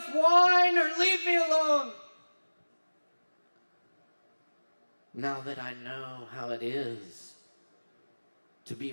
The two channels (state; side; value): inverted; both; correlation -1.00